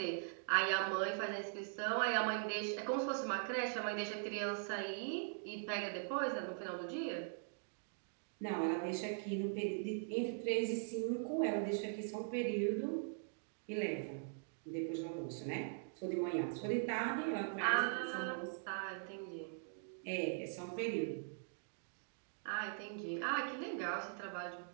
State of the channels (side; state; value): left; silent; digital silence